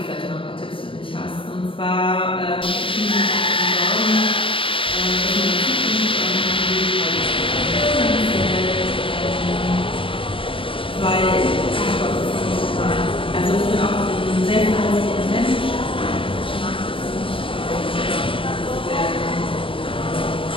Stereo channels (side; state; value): right; late; 0.25 ms